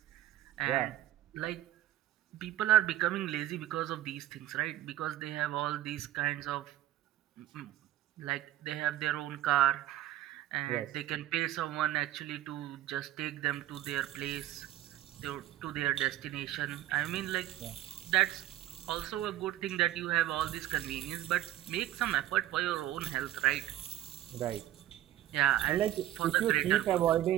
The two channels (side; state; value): left; quieter; 13.3 dB